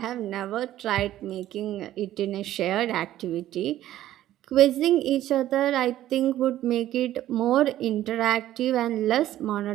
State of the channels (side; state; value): left; quieter; 13.4 dB